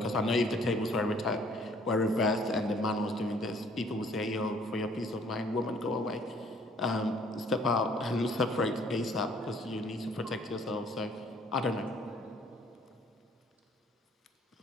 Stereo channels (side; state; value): both; normal; correlation 0.60